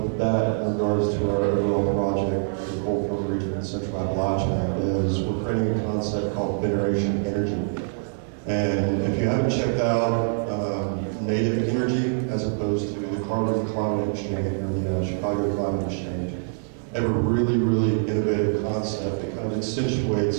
that in regards to our overall project, the Broyhill region in Central Appalachia, is we're creating a concept called Veneration Energy. And if you haven't checked out native energy as opposed to the Carbon Climate Exchange or the Chicago Climate Exchange, they have a really, really innovative concept that kind of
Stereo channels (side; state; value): left; silent; digital silence